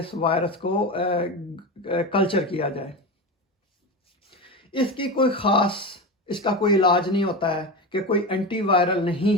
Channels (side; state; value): both; normal; correlation 0.22